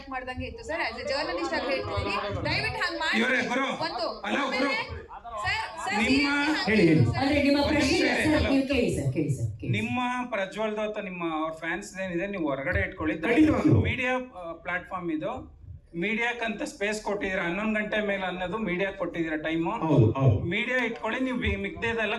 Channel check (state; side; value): identical; both; correlation 1.00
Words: ಮಾಡ್ದಂಗೆ ಇತ್ತು ಸರ್. ಆಸ್ ಎ ಜರ್ನಲಿಸ್ಟ್ ಆಗಿ ಹೇಳ್ತೀನಿ, ದಯವಿಟ್ಟು ಹಂಗ್ ಮಾಡಿ. ಇವ್ರೆ ಗುರು, ಒಂದು ಹಲೋ ಗುರು, ನಿಮ್ಮ ಅಂದ್ರೆ ನಿಮ್ಮ ಪ್ರಶ್ನೆ ಸರ್, ನೀವು ಕೇಳಿ ಸರ್, ಕೇಳಿ ಸರ್. ನಿಮ್ಮ ಪ್ರಜ್ವಲ್ದು ಅಥವಾ ನಿಮ್ಮ ಅವ್ರ ಫ್ಯಾನ್ಸ್ ಏನಿದೆ ನೀವು ಹೊರಗಡೆ ಇಟ್ಕೊಳ್ಳಿ. ಮೀಡಿಯಾ ಪ್ಲಾಟ್ಫಾರ್ಮ್ ಇದು, ಮೀಡಿಯಾಕ್ಕಂತ ಸ್ಪೇಸ್ ಕೊಟ್ಟಿದ್ದೀರಾ. 11 ಗಂಟೆ ಮೇಲೆ ಅನ್ನೋದು ಮೀಡಿಯಾ ಕೊಟ್ಟಿದ್ದೀರಾ ಟೈಮು. ಮೀಡಿಯಾ ಇಟ್ಕೊಳ್ಳಿ, ನೀವು ಮಿಗ್ದೇದೆಲ್ಲ